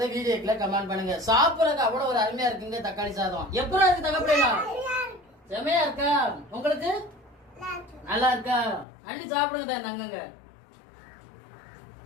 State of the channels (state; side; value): drops out; right; at 8.8 s